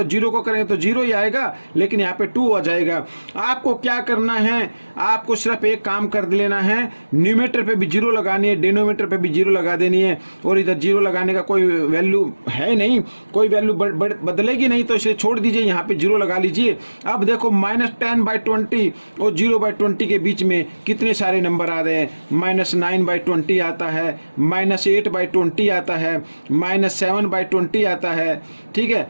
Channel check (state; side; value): inverted; both; correlation -1.00